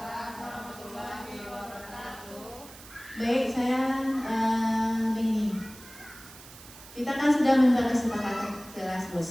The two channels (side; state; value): right; noise; hiss, 18 dB below the sound